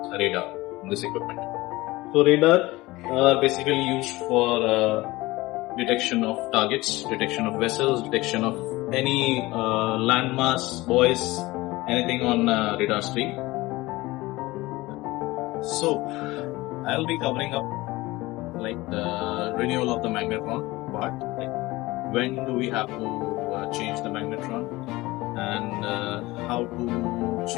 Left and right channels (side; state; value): right; quieter; 20.1 dB